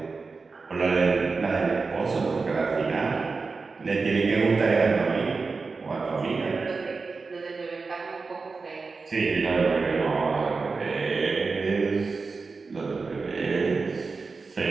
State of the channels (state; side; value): quieter; left; 4.3 dB